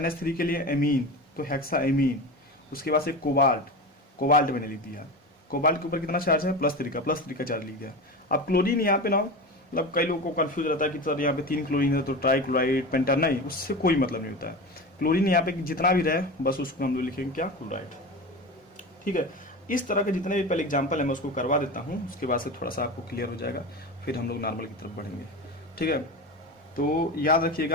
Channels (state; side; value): normal; both; correlation 0.26